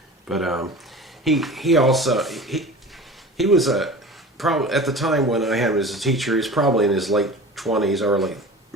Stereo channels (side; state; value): both; normal; correlation 0.37